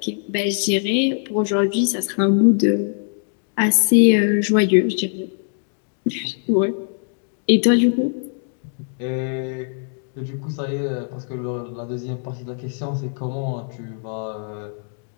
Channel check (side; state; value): right; silent; digital silence